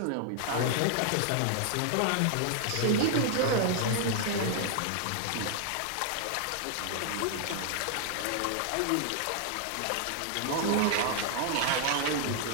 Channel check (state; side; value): different; both; correlation 0.00